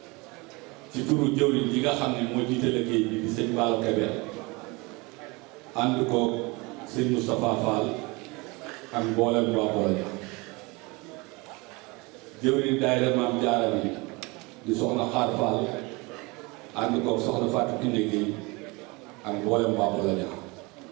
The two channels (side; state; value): left; quieter; 25.8 dB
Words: ci turu jawri yi nga xam ni moo jiite liggéey bi di sëñ Balo Kébé ànd ko sëñ Moustapha Fall ak mboolem waa Bologna jëwriñ daayira Maam Jaara bi di soxna Xaar Fall ànd ko soxna Fatou Kinde Gueye ak mboolem waa Bologna.